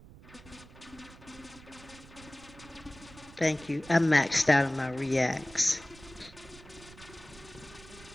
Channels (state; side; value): noise; right; rumble, 20 dB below the sound